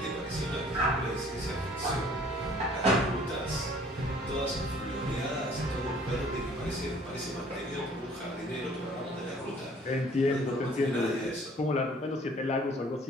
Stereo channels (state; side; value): normal; both; correlation 0.55